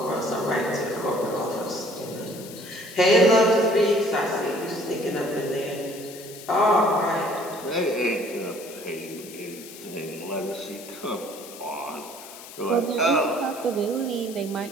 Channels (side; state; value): left; noise; hiss, 15 dB below the sound